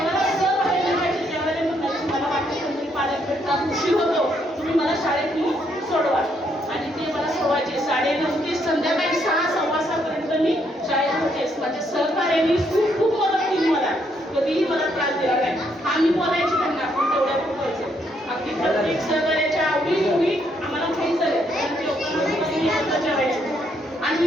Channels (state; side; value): normal; both; correlation 0.73